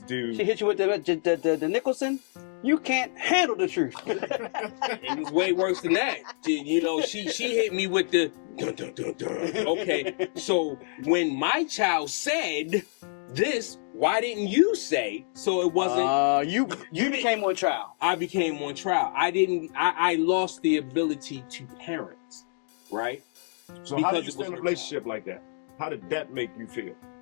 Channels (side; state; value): right; silent; 58 dB below the other